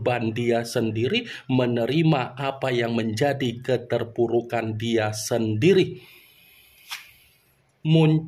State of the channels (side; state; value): both; identical; correlation 1.00